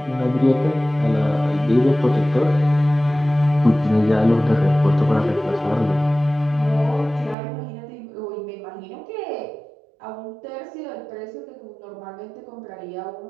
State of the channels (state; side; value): drops out; left; at 7.4 s